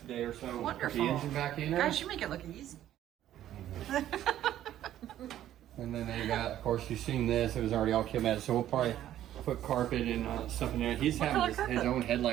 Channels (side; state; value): left; quieter; 12.2 dB